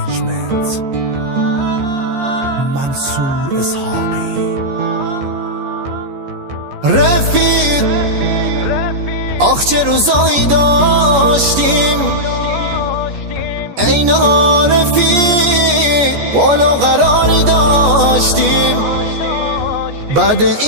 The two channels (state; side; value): late; left; 14 ms